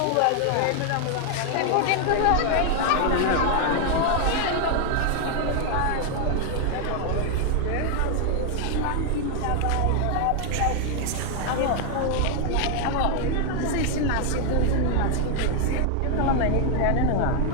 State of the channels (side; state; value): both; different; correlation 0.00